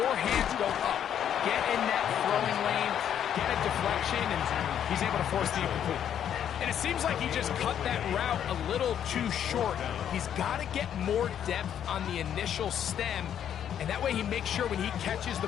hands go up. Get in that throwing lane, get a deflection, and he's able to force the incomplete. And it seems like he just cut that route a little too short. He's got to get more depth on the initial stem, and that way he makes sure when he catches the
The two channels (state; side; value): quieter; right; 9.5 dB